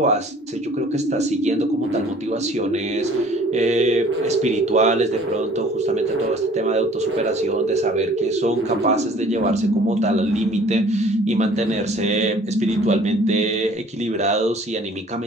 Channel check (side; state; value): both; normal; correlation 0.52